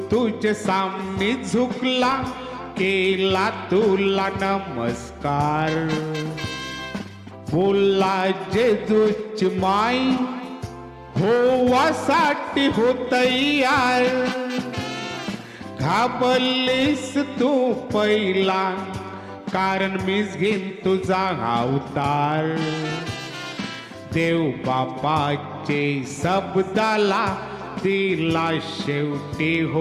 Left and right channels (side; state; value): both; identical; correlation 1.00